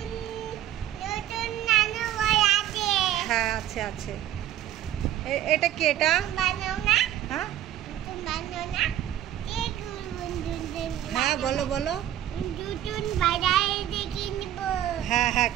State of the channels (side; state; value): left; quieter; 11.9 dB